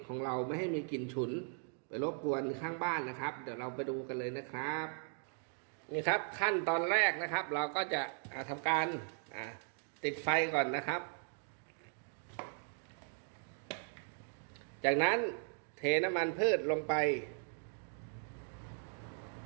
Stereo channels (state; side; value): silent; left; 52 dB below the other